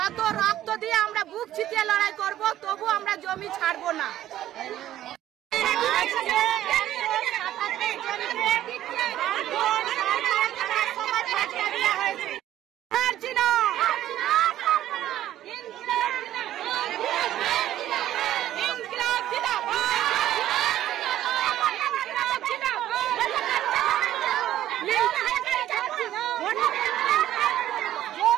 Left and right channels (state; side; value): quieter; left; 12.8 dB